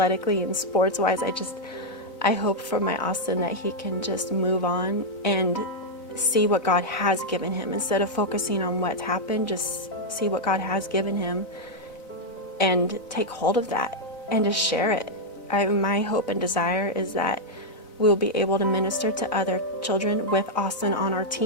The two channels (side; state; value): right; late; 4.0 ms